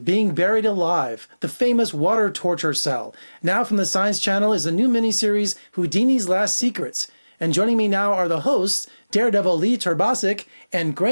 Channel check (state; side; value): inverted; both; correlation -1.00